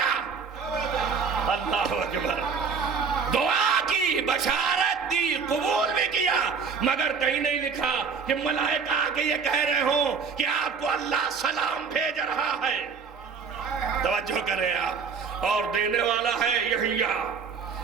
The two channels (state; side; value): quieter; left; 5.7 dB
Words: اللہ اکبر. دعا کی بشارت دی، قبول بھی کیا، مگر کہیں نہیں لکھا کہ ملائکہ آ کے یہ کہہ رہے ہوں کہ آپ کو اللہ سلام بھیج رہا ہے. توجہ کریں آپ. اور دینے والا ہے یحییٰ.